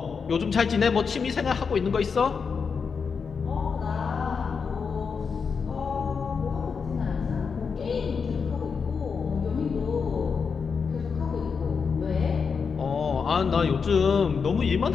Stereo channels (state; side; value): quieter; right; 5.7 dB